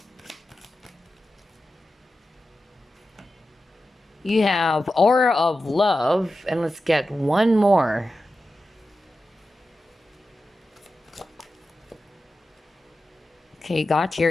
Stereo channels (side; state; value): both; normal; correlation 0.92